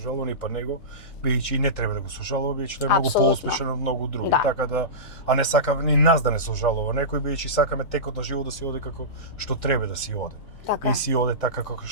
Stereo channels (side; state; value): both; normal; correlation -0.19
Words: ни па него, бидејќи и не треба да го сожалува, бидејќи тој е многу поуспешен од многу други, така да, а не сакаме ни нас да не сожалува некој, бидејќи сакаме текот на живот да си оде како што треба да си оде. Така. И си оде така како